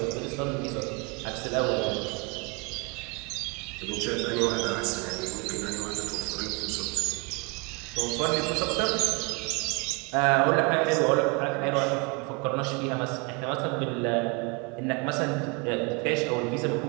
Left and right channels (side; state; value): left; quieter; 30.1 dB